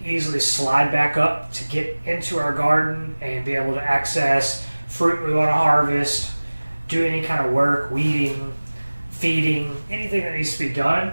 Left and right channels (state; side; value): inverted; both; correlation -1.00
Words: easily slide back up to get into our garden and be able to access fruit we want to harvest, do any kind of work, weeding, feeding, anything that needs to be done.